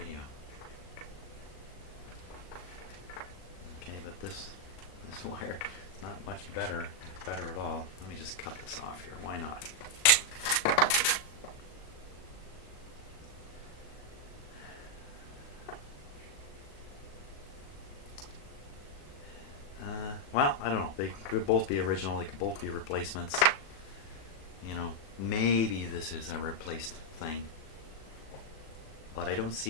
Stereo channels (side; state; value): right; late; 38 ms